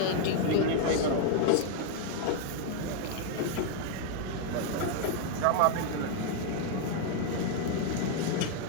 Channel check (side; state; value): both; different; correlation 0.00